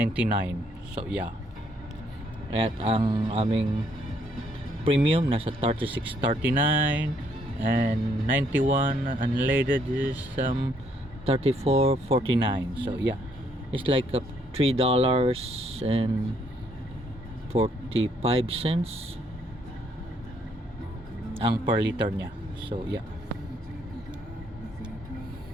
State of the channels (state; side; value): normal; both; correlation 0.70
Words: So yeah. At ang aming premium nasa 36.39 and 91 unleaded is 34.49. So yeah. It's like $3.45 ang per liter niya. So yeah.